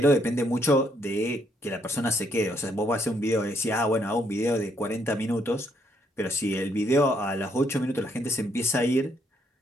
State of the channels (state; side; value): normal; both; correlation 0.72